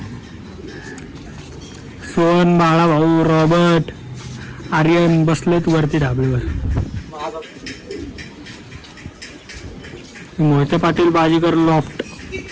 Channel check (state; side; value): identical; both; correlation 1.00